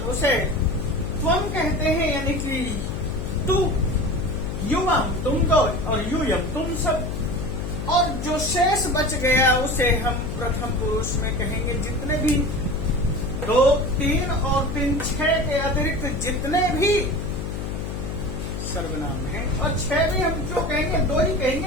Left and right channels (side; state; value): left; noise; hum, 5 dB below the sound